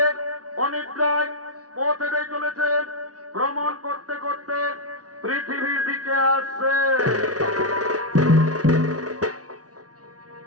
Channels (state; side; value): late; left; 0.68 ms